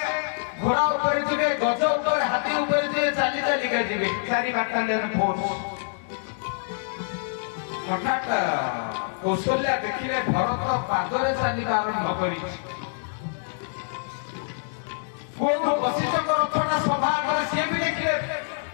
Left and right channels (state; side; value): silent; right; digital silence